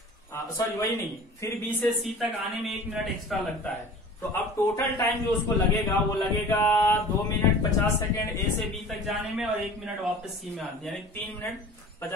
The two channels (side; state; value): both; normal; correlation 0.42